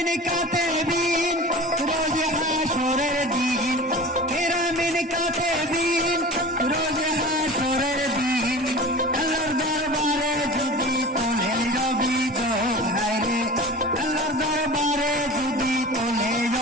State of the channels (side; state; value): both; normal; correlation 0.36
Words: কাতেবিন রোজ হাসরের দিন, কেরামিন কাতেবিন রোজ হাসরের দিন, আল্লাহর দরবারে যদি তোলে অভিযোগ, হায়রে আল্লাহর দরবারে যদি তোলে